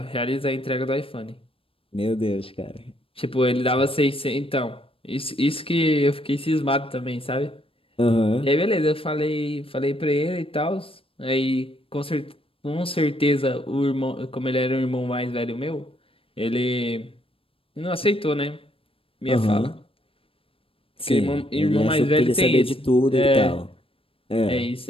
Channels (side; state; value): right; late; 0.27 ms